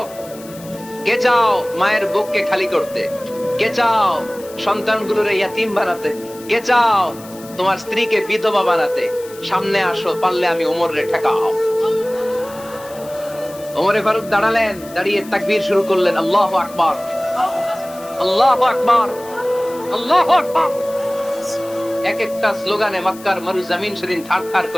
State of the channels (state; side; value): noise; left; hiss, 19 dB below the sound